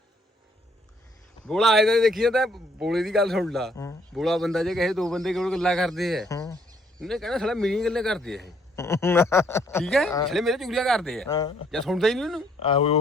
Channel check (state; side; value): normal; both; correlation 0.67